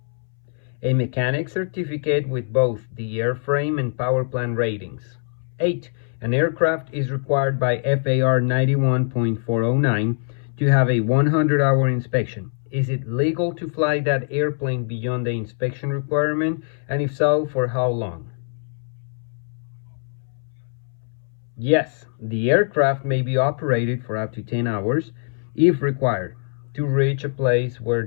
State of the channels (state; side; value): silent; right; 63 dB below the other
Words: A mechanic certificate with both the airframe and power plant ratings. 8. An aircraft is required by FAR 91.409 to have a 100-hour inspection. Is it legal to fly that airplane beyond the inspection requirement, and if so, for how long? Yes, the aircraft may be operated for up to 10 hours, if required, to reach a place where